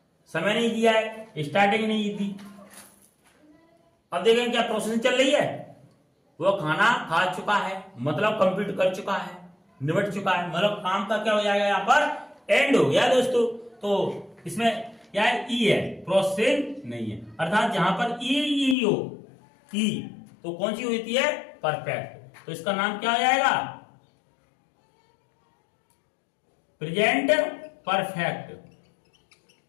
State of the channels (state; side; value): drops out; right; at 18.8 s